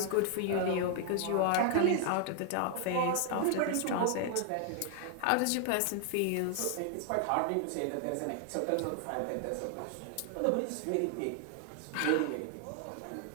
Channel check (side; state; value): both; different; correlation 0.00